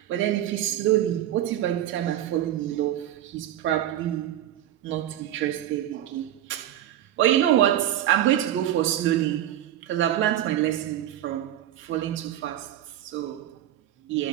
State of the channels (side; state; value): left; quieter; 12.1 dB